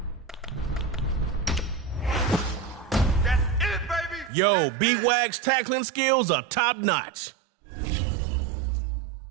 That's it, baby! Yo, B-Wag's tackling skills are top-notch.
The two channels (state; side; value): drops out; left; at 4.3 s